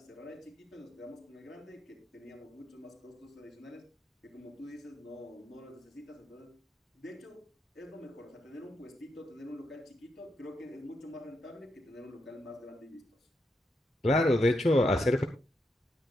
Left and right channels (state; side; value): normal; both; correlation 0.82